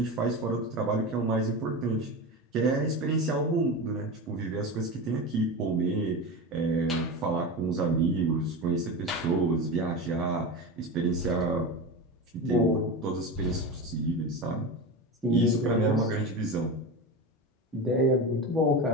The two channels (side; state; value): both; normal; correlation 0.24